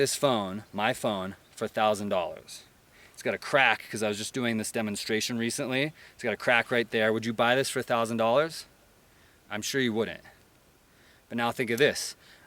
phone, my phone, for $1,000? It's got a crack because I was just doing this demonstration recently. It's got a crack right there. Would you buy this for $1,000? I'm sure you wouldn't. But now think of this.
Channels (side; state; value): both; identical; correlation 1.00